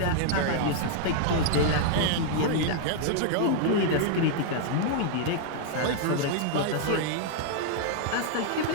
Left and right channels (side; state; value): both; different; correlation -0.01